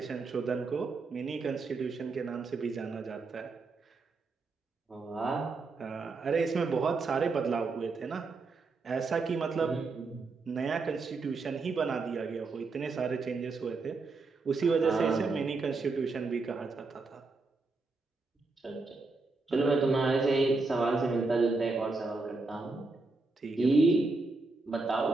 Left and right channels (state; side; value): quieter; left; 3.8 dB